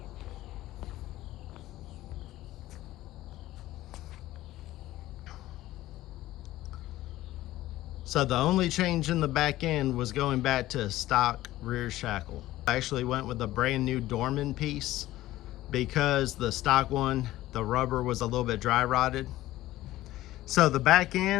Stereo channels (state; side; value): quieter; right; 15.7 dB